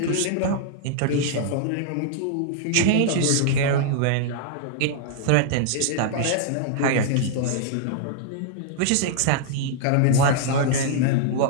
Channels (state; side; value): different; both; correlation -0.01